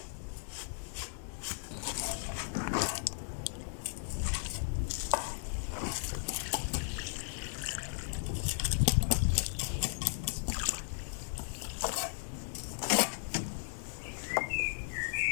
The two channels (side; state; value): right; silent; digital silence